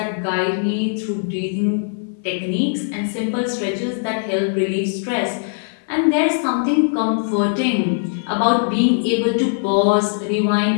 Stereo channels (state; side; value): silent; right; 61 dB below the other